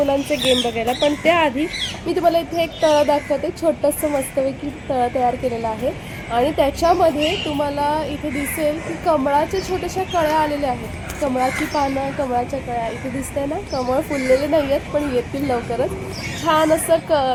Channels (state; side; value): identical; both; correlation 1.00